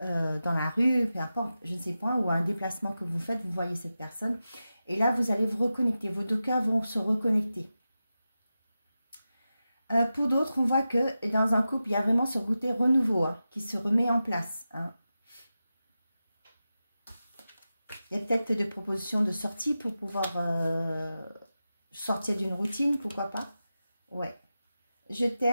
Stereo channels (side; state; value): both; inverted; correlation -0.93